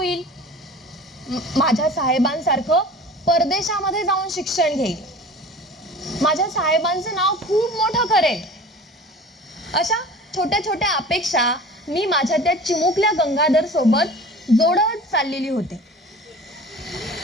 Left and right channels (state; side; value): normal; both; correlation 0.40